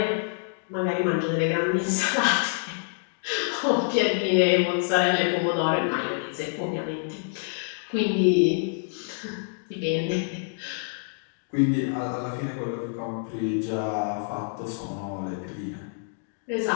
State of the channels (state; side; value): silent; right; digital silence